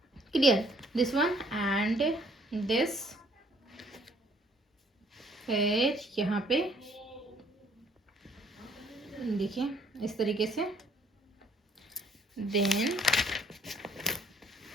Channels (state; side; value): normal; both; correlation 0.63